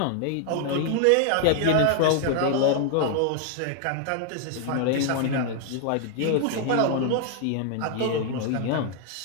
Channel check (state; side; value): different; both; correlation 0.00